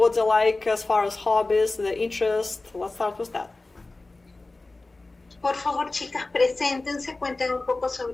they like as far as hobbies, their interests. Let's start with that. Por favor, chicas, preséntense, cuenten un poco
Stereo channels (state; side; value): quieter; right; 3.2 dB